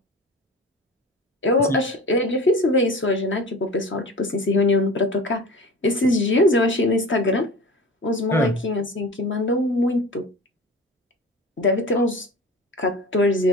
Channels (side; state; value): both; normal; correlation 0.36